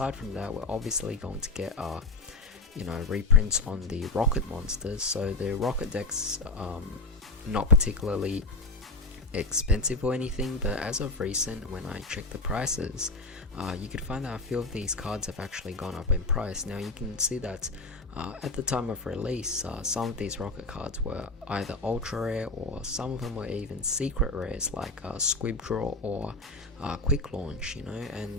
from that, we're obviously going to get you know, reprints on the Rocket monsters. So the Rocket decks, not particularly expensive or anything, but as of recent, when I checked the prices, you could find that a few of these cards have actually gone up in price. Now you can see that at the time of release, some of these Rocket cards were either ultra rare, or some of them were even secret rares like Squib Draw or Quick Launch, you know,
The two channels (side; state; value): right; quieter; 3.1 dB